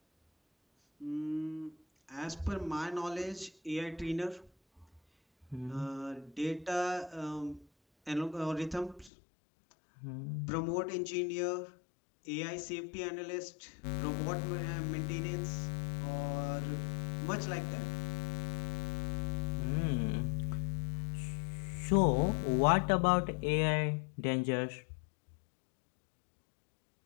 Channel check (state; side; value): drops out; right; at 9.1 s